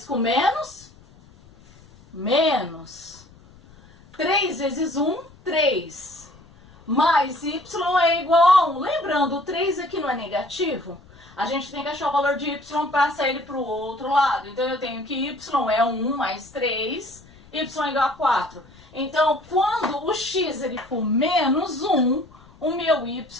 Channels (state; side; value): noise; left; rumble, 25 dB below the sound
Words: com menos, menos. 3 vezes 1, 3. Mais y é igual a 1. Lembrando, o 3 aqui não é negativo? A gente tem que achar o valor de y para passar ele para o outro lado. Então, eu tenho que y é 1 mais 3, y é igual a 4. Então, quando o x ele for menos 1, o meu